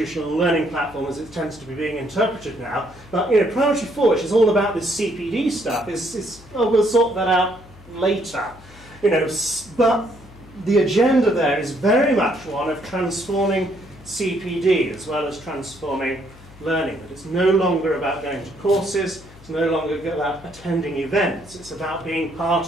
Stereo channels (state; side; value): noise; left; hum, 22 dB below the sound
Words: learning platform as it tends to be being interpreted now. But you know, priority 4, which is all about this CPD stuff, is we'll sort that out later. You know, but the agenda there is very much one of transforming CPD as well as transforming learning. That it's no longer about going to courses, it's no longer about attending events, it's about being